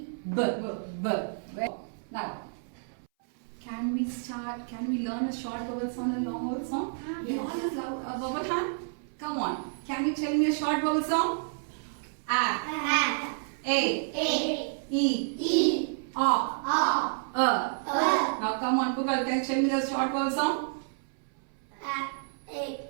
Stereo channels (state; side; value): silent; left; 58 dB below the other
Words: Now, can we learn a short vowel sound and long vowel sound? We all use a vowel hand. Come on. Can you tell me a short vowel sound? A. E. Now come on, Pukal, can you tell me the short vowel sound?